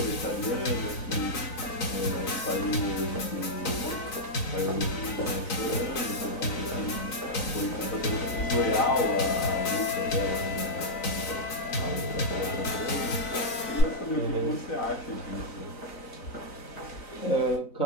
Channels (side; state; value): right; late; 3.9 ms